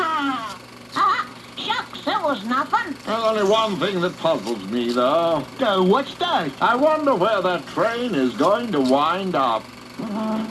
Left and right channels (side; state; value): both; identical; correlation 1.00